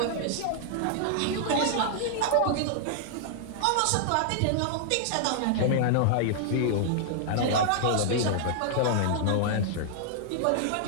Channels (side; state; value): both; different; correlation -0.01